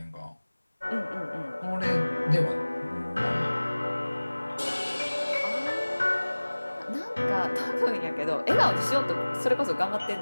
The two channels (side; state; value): both; inverted; correlation -1.00